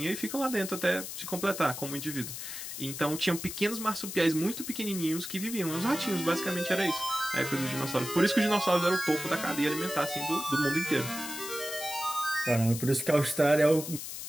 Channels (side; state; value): left; noise; hiss, 8 dB below the sound